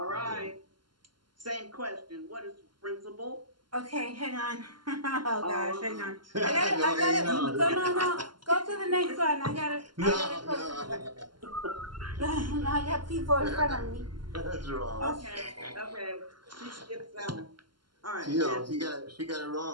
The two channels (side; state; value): left; late; 0.72 ms